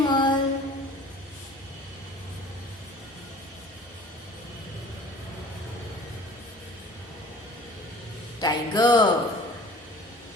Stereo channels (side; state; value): both; normal; correlation 0.47